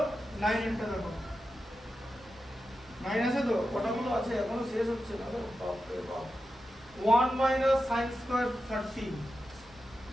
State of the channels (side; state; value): both; normal; correlation 0.90